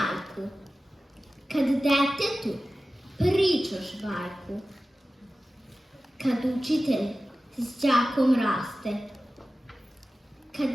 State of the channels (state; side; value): normal; both; correlation 0.95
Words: kad detetu pričaš bajku, kad učitelj s đakom raste,